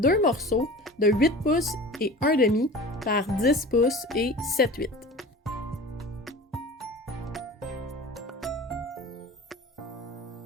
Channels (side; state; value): both; normal; correlation 0.38